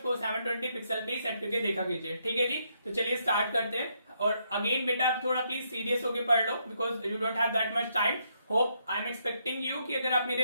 720 पिक्सल पे सेट करके देखा कीजिए, ठीक है जी। तो चलिए स्टार्ट करते हैं। और अगेन बेटा आप थोड़ा प्लीज सीरियस होकर पढ़ लो, because you don't have that much time. Hope I am expecting you कि अगर आप मेरे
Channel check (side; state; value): both; inverted; correlation -0.76